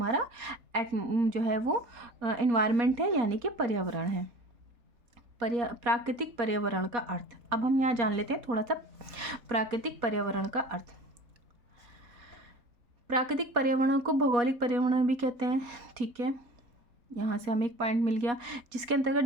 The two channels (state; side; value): late; left; 4.2 ms